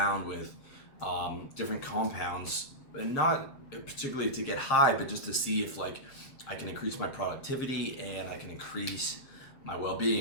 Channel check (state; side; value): late; right; 7.4 ms